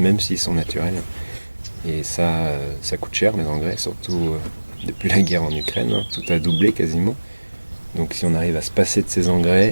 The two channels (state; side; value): inverted; both; correlation -1.00